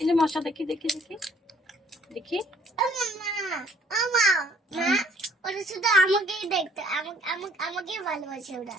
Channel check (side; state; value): both; normal; correlation 0.61